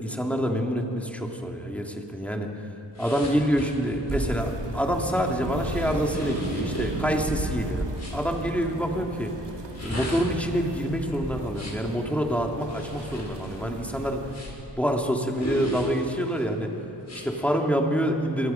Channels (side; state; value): both; normal; correlation 0.67